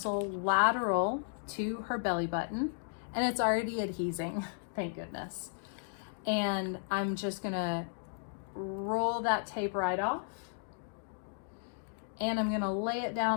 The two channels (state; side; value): silent; right; digital silence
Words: lateral to her belly button, and it's already adhesing. thank goodness. And I'm just gonna roll that tape right off. And I'm gonna lay it